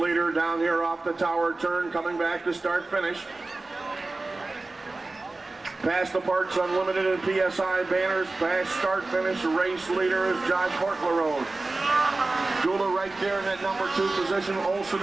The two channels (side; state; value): left; quieter; 3.3 dB